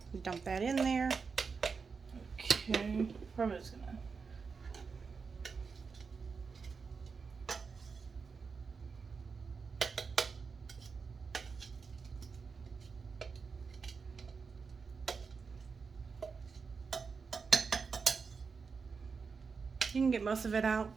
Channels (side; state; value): left; quieter; 5.2 dB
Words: Dump that in there. Okay. Probably just gonna. You can get most of it out,